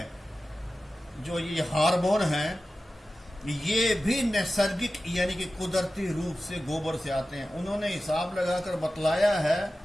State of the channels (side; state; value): both; normal; correlation 0.94